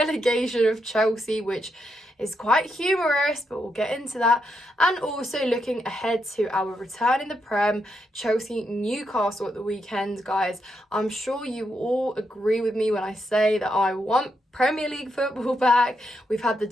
of Chelsea, which is quite humorous, but we'll get into that. And also looking ahead to our return in the Prem, Chelsea Newcastle at the weekend. Guys, I'm sure you all agree with me when I say that I want Premier League football back. We've had the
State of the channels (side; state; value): both; normal; correlation 0.81